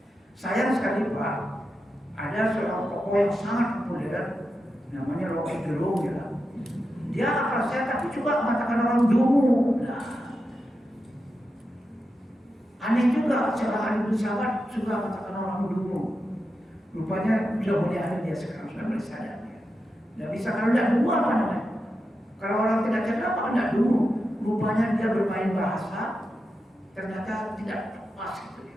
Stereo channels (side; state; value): both; normal; correlation 0.89